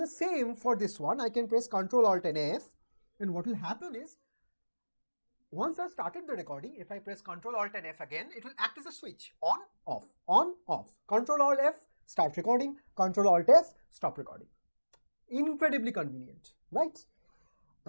same for this one. I can press Ctrl Alt and F, and what will happen is, once I started the recording, if I press Ctrl Alt and F again, it will act as a switch, on, off, Ctrl Alt F, start recording, Ctrl Alt F, stop recording. Incredibly convenient, right?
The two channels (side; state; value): both; inverted; correlation -1.00